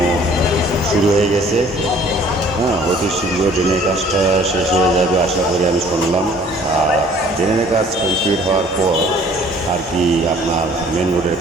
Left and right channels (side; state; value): both; normal; correlation 0.55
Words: শুরু হয়ে গেছে। হ্যাঁ, অতি শীঘ্র ড্রেনের কাজটা শেষ হয়ে যাবে আশা করি, আমি শুনলাম। আর ড্রেনের কাজ কমপ্লিট হওয়ার পর আর কি আপনার মেন রোডের